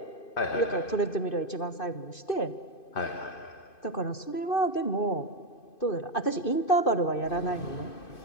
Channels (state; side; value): late; right; 2.5 ms